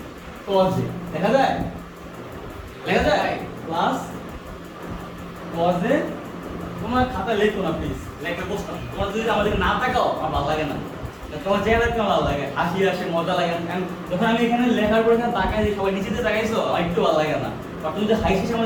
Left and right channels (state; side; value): identical; both; correlation 1.00